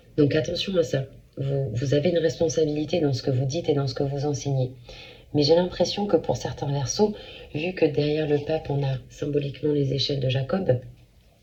Donc attention à ça. Vous avez une responsabilité dans ce que vous dites et dans ce que vous enseignez. Mais j'ai l'impression que pour certains Verseaux, vu que derrière le pape, on a symboliquement les échelles de Jacob,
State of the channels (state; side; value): identical; both; correlation 1.00